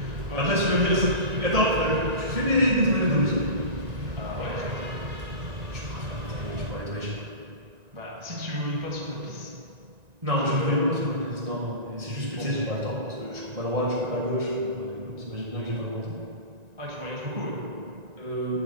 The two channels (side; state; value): left; late; 1.9 ms